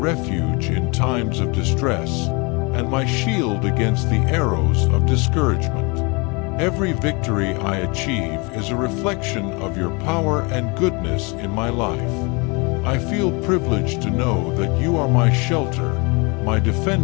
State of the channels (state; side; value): quieter; right; 29.3 dB